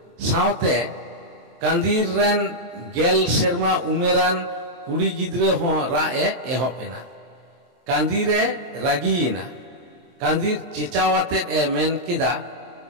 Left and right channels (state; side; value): late; left; 23 ms